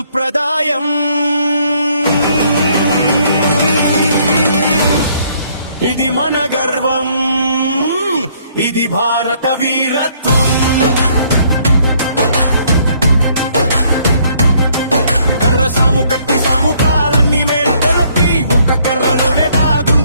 ఇది మన గర్వం, ఇది భారత వీరత్వం. కర్ర సాము కత్తి సాము కాలన్నీ మేల్కొలపి ఒక్క కర్రలోనే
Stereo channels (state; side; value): inverted; both; correlation -0.65